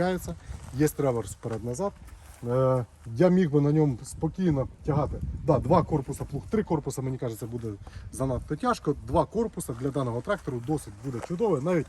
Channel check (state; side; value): identical; both; correlation 1.00